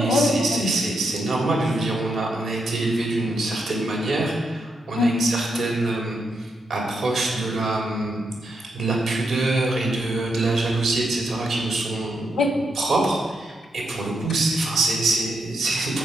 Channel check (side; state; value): both; normal; correlation 0.82